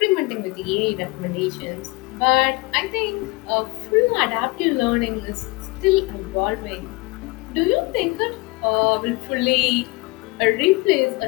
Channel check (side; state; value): right; quieter; 25.0 dB